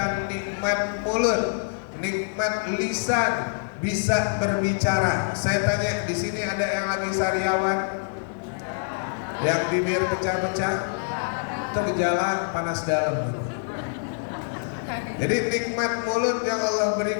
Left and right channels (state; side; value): silent; right; digital silence